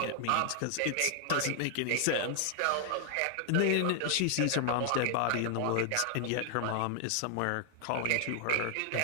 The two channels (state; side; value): different; both; correlation 0.00